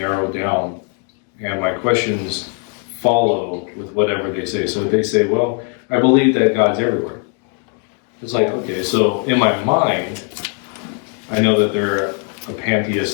it down. And my questions follow with whatever they say. So if they say, well, I believe that God's everywhere. It's like, okay, so in my mind, I know that they're a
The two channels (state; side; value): quieter; right; 39.9 dB